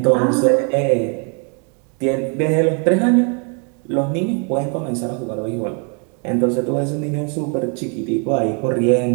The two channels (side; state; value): left; quieter; 38.1 dB